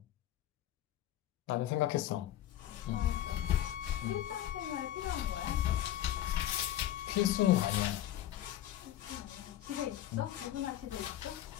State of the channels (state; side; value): quieter; right; 12.7 dB